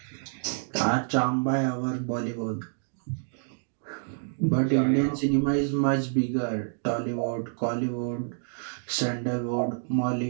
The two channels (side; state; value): left; silent; digital silence